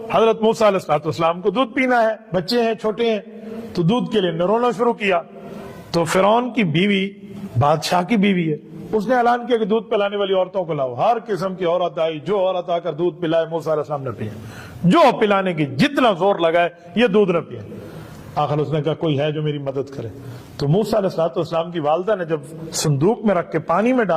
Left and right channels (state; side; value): identical; both; correlation 1.00